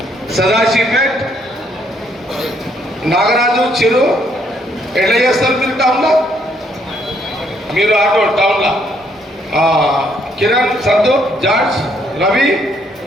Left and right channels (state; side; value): normal; both; correlation 0.70